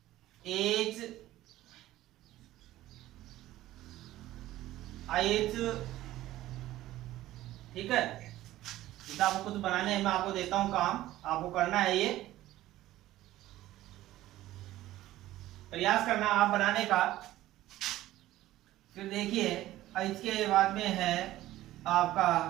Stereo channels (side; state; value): left; quieter; 15.2 dB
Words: एज, आयज। ठीक है, जैसे आपको कुछ बनाने हैं, मैं आपको देता हूं काम, आपको करना है, ये प्रयास करना आप बनाने का। फिर देखिए इसके बाद में है आपका,